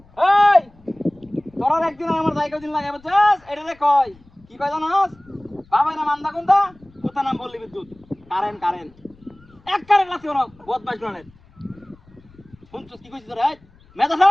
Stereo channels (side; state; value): left; noise; rumble, 28 dB below the sound